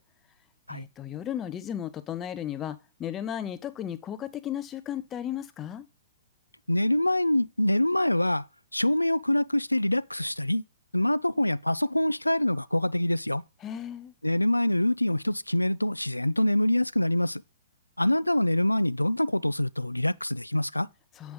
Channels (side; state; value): both; inverted; correlation -0.93